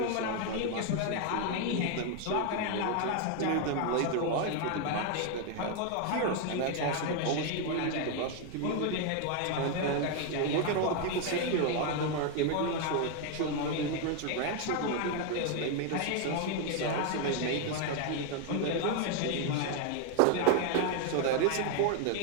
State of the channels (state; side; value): different; both; correlation 0.01